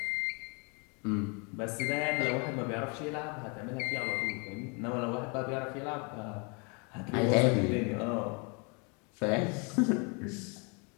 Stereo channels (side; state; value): right; quieter; 33.4 dB